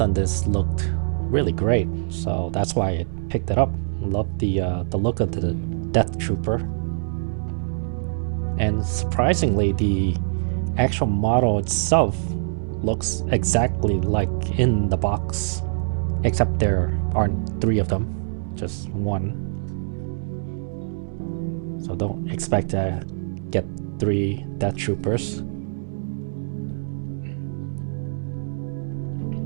on this looked really great, so that's why I picked it up. Love the look of the Death Trooper. And surprisingly, the actual model itself looks exactly like in the box, except there aren't three of them, just one. So don't expect to get three Death Troopers.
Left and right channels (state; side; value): silent; left; digital silence